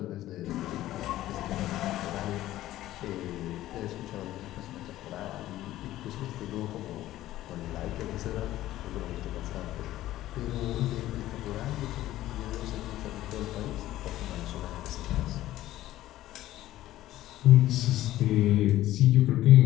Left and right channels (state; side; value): quieter; right; 14.7 dB